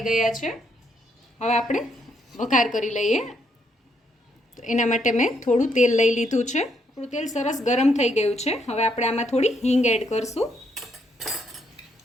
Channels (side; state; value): both; normal; correlation 0.74